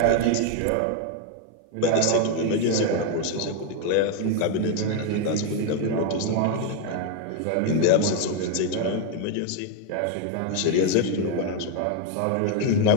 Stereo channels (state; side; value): different; both; correlation 0.01